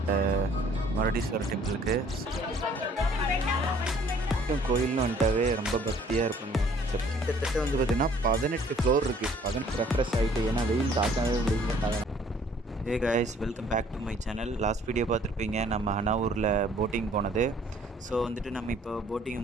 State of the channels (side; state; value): both; normal; correlation 0.58